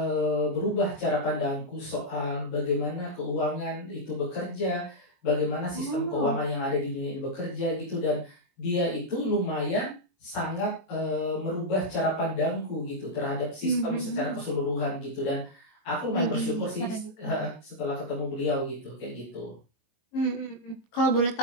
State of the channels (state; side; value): late; right; 22 ms